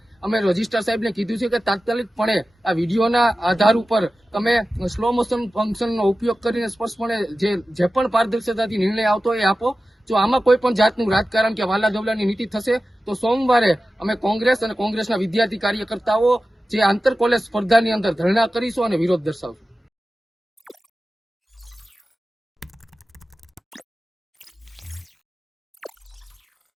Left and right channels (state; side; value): normal; both; correlation 0.95